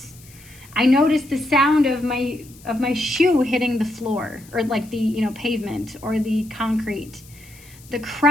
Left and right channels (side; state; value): left; noise; hiss, 23 dB below the sound